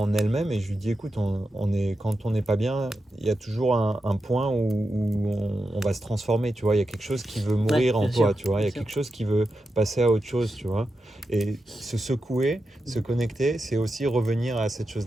elle-même et je lui dis écoute, quand on n'est pas bien, il y a toujours un point où on va se transformer, tu vois, il y a quelque chose qui veut mourir en toi, tu vois, il y a quelque chose qui veut passer à autre chose, tu vois. Et se secouer, se connecter, c'est aussi revenir à cette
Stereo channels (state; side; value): normal; both; correlation 0.89